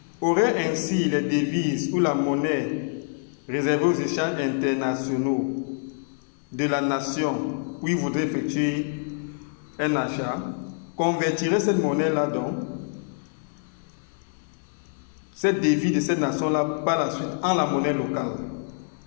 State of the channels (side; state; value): right; silent; digital silence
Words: aurait ainsi les devises ou la monnaie réservée aux échanges internationaux de la nation où il voudrait effectuer un achat, convertirait cette monnaie-là donc, cette devise de cette nation-là par la suite en la monnaie locale